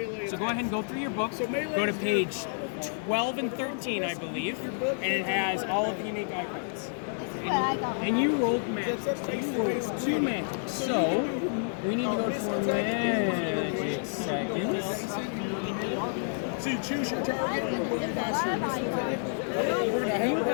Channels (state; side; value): silent; right; 57 dB below the other